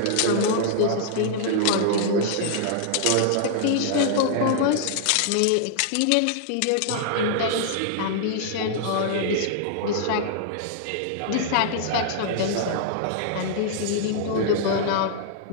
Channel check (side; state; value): both; different; correlation -0.01